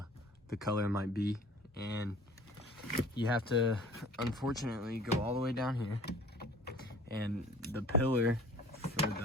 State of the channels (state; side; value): normal; both; correlation 0.49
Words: color might be. And you have to, unfortunately, go all the way down here, and the pillar